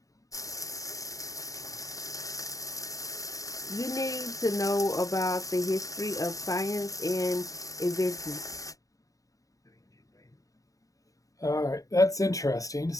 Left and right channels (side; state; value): right; late; 0.16 ms